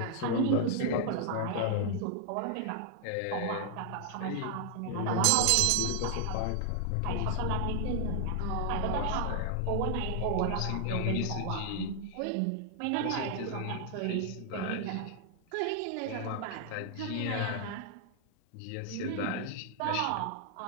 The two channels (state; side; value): different; both; correlation 0.00